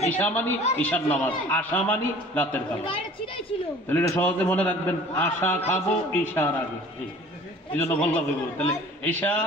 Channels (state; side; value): normal; both; correlation 0.48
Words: ঈশা মানি ঈশার নামাজ, আশা মানি রাতের খাবার। তাহলে এটা সহজে মনে রাখবেন, আশা খাবো ঈশার আগে। এই জন্য বললাম তাহলে ঈশা